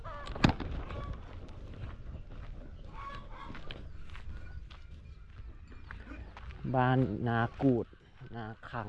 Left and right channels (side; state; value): both; identical; correlation 1.00